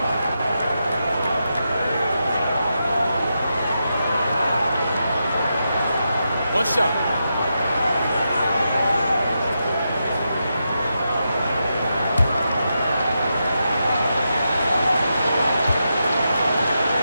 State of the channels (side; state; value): both; inverted; correlation -0.86